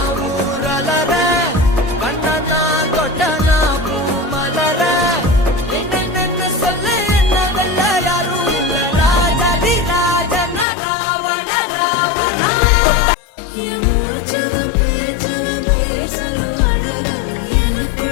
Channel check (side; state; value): right; drops out; at 10.7 s